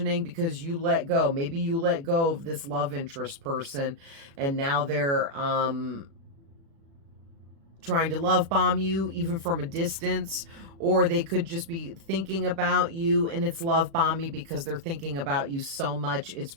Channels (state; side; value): late; left; 36 ms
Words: because you let go. Maybe you let go of this love interest person and now they're trying to love bomb you even from a distance, or they could just be thinking about you and it's love bombing because they're thinking about you so much it's